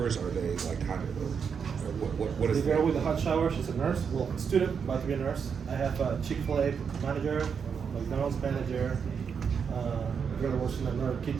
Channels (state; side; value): quieter; left; 6.6 dB